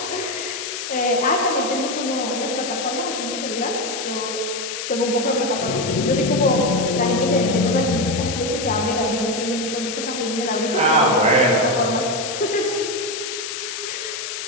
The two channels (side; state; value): left; noise; hiss, 6 dB below the sound